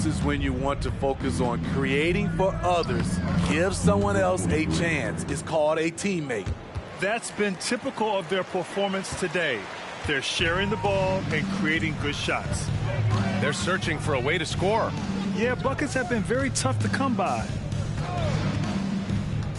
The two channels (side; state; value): both; identical; correlation 1.00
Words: is when you want to focus on creating for others. Give someone else a chance. It's called a teammate. That's been typical of their performance today. They're sharing the ball and creating good shots. They're searching for a way to score. Yeah, buckets have been very tough to come by.